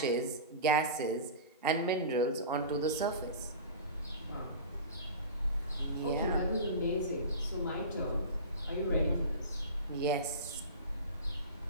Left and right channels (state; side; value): inverted; both; correlation -0.32